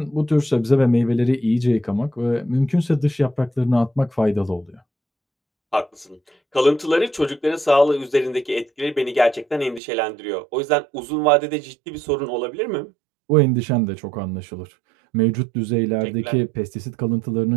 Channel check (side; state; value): left; drops out; at 9.8 s